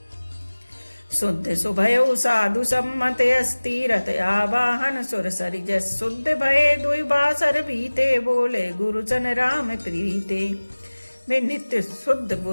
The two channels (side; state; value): both; inverted; correlation -1.00